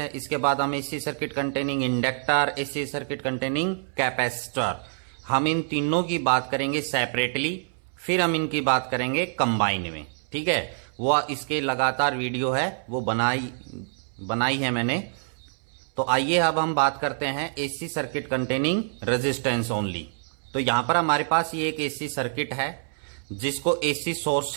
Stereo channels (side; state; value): left; silent; 61 dB below the other